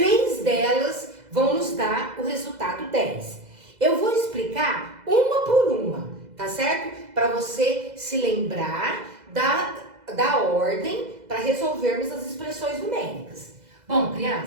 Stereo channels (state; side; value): late; left; 2.0 ms